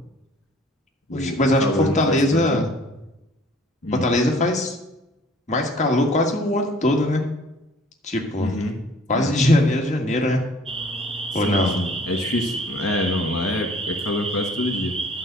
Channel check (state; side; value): normal; both; correlation 0.54